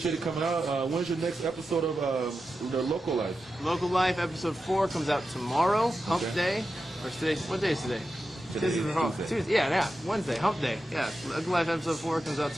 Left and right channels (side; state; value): both; normal; correlation 0.90